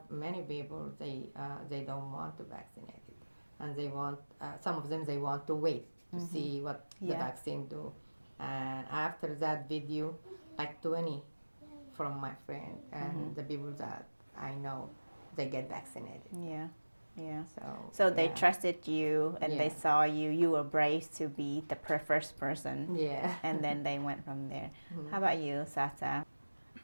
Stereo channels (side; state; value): both; inverted; correlation -1.00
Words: many people, they don't want to vaccinate it, and they want some of them, they want to wait to see what the vaccine do. And after that video, like 20 from my friend and the people that I know, they get vaccinated. Yeah. Yeah. So So they yeah. trusted you and they Yeah. saw you were brave to be the first person. Yeah. And then they went from there. How about you, Sata?